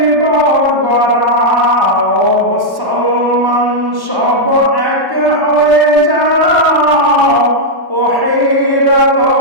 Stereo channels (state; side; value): late; left; 1.1 ms